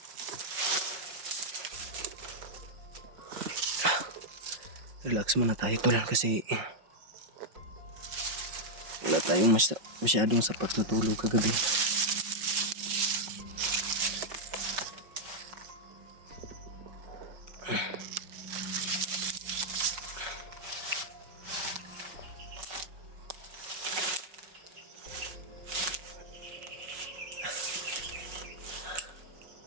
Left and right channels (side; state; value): left; late; 5.6 ms